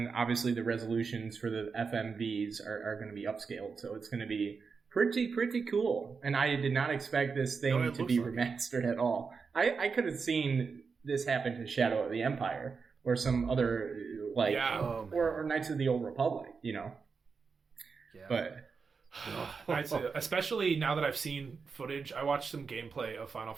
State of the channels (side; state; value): left; quieter; 5.2 dB